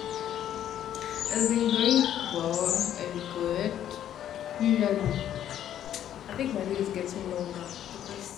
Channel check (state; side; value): quieter; right; 10.8 dB